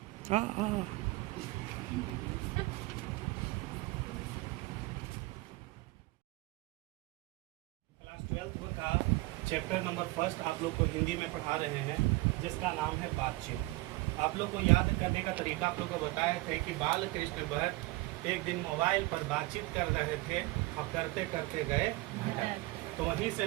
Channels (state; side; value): quieter; left; 21.3 dB